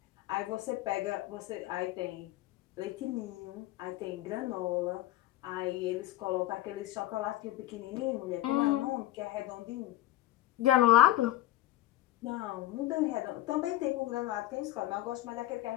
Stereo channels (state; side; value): quieter; right; 15.2 dB